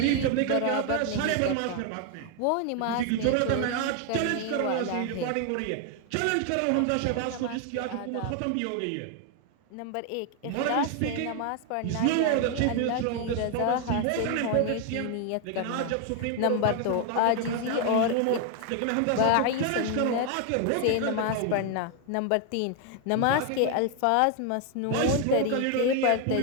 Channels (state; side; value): different; both; correlation 0.01